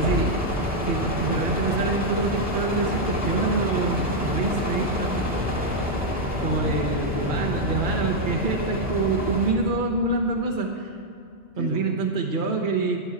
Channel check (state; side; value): normal; both; correlation -0.02